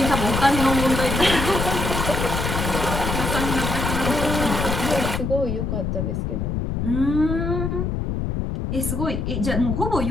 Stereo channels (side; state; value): left; noise; rumble, 1 dB below the sound